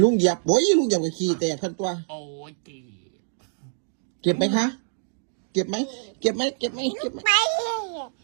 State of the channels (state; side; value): silent; left; digital silence